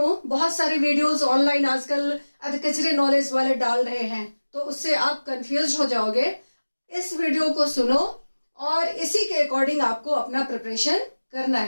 बहुत सारे वीडियोस ऑनलाइन आजकल अधकचरे नॉलेज वाले डाल रहे हैं, तो उससे आप कंफ्यूज हो जाओगे। इस वीडियो को सुनो और इसी के अकॉर्डिंग आपको अपना प्रिपरेशन करना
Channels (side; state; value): both; inverted; correlation -1.00